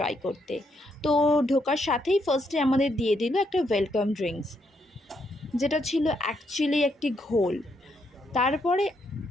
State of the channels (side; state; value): both; normal; correlation 0.76